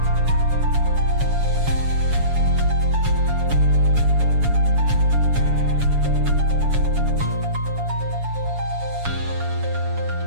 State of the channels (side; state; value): left; late; 7.1 ms